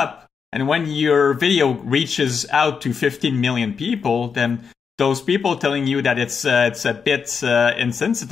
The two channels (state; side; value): quieter; right; 6.1 dB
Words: and when your video reaches out to 15 million people, then those people telling you that it's a bit